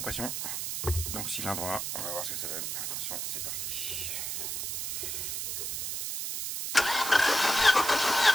Donc cylindre 1, on va voir ce que ça donne. Attention, c'est parti.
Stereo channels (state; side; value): noise; right; hiss, 3 dB below the sound